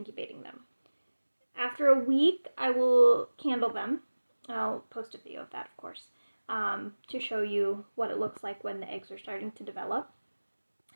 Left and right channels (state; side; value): inverted; both; correlation -1.00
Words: them. After a week, I will candle them. I'll post a video of that, of course, to show you what it looks like when the eggs are starting to develop.